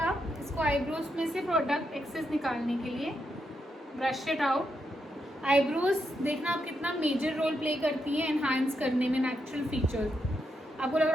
आप इसको eyebrows में से प्रोडक्ट एक्सेस निकालने के लिए. Brush it out. आईब्रोज देखना आप कितना मेजर रोल प्ले करती है एनहांस करने में नेचुरल फीचर्स. आपको लग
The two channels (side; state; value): both; normal; correlation 0.82